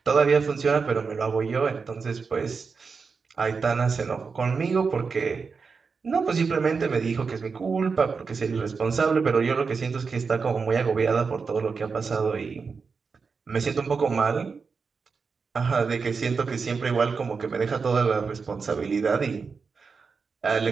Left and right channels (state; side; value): quieter; left; 5.1 dB